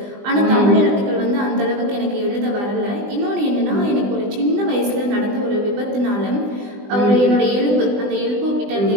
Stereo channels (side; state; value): left; late; 20 ms